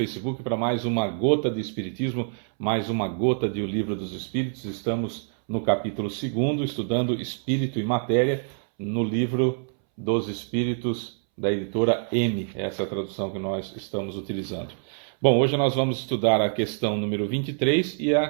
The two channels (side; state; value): left; silent; 61 dB below the other